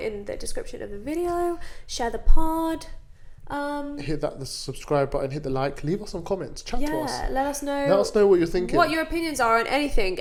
the description of the video. Share the pod. Hit the subscribe button, hit the like, leave us some comments, chat to us. Let us know. Let us know what you're thinking. What your opinions are on anything,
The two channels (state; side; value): identical; both; correlation 1.00